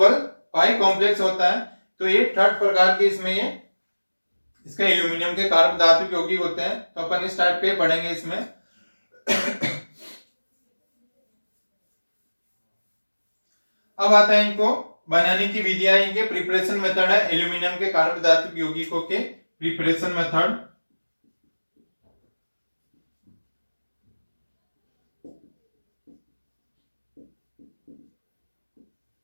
पाई कॉम्प्लेक्स होता है। तो ये थर्ड प्रकार के इसमें ये इसका एल्यूमिनियम के कार्बधात्विक यौगिक होते हैं। तो अपन इस टाइप के पढ़ेंगे इसमें। अब आता है इनको बनाने की विधियां, इनके प्रिपरेशन मेथड है एल्यूमिनियम के कार्बधात्विक यौगिकों के preparation method.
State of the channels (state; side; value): inverted; both; correlation -1.00